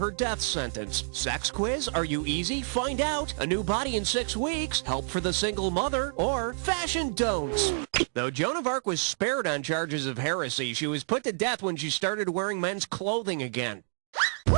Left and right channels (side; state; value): left; silent; digital silence